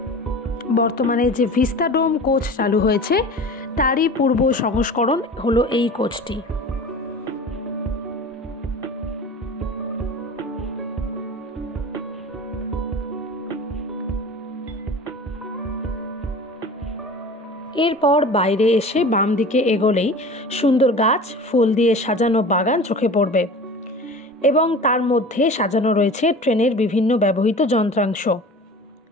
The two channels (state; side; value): normal; both; correlation 0.38